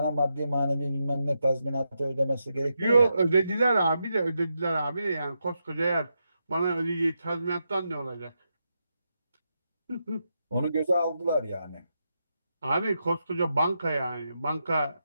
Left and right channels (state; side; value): inverted; both; correlation -0.85